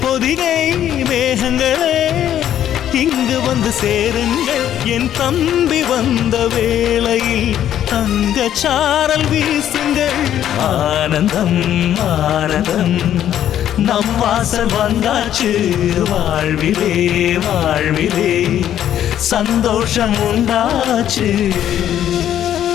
மேகங்களே இங்கு வந்து சேருங்கள். என் தம்பி வந்த வேளையில் தங்க சாரல் வீசுங்கள். ஆனந்தம் ஆனந்தம் நம் வாசல் வந்தாச்சு. வாழ்விலே வாழ்விலே சந்தோஷம் உண்டாச்சு.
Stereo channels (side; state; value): right; quieter; 10.9 dB